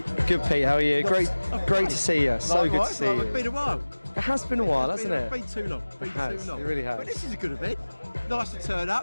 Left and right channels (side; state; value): both; inverted; correlation -1.00